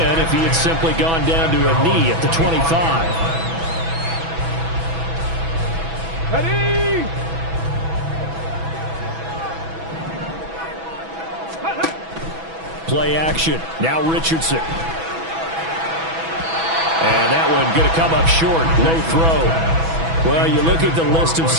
if he had simply gone down to a knee at the 25. Ready? Play action. Now Richardson. And that one going to come up short. Low throw. Well, you look at the list of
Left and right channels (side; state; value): left; late; 6.1 ms